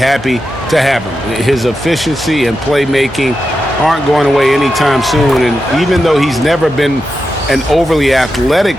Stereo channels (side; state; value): both; normal; correlation 0.89